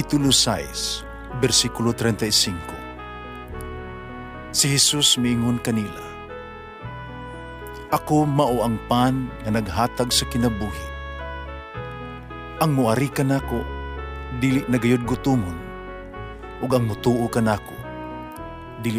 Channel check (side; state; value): both; identical; correlation 1.00